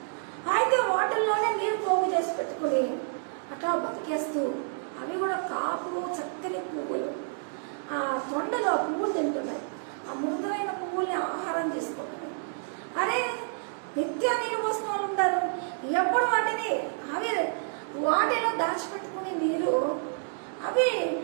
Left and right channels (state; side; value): silent; left; digital silence